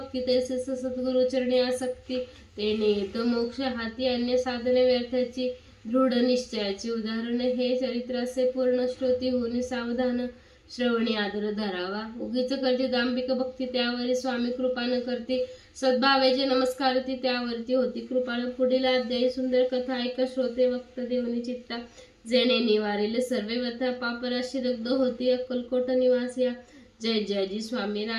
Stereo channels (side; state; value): both; identical; correlation 1.00